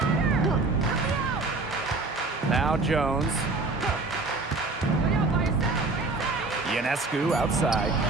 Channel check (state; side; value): quieter; left; 3.4 dB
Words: Now Jones. Ionescu outside.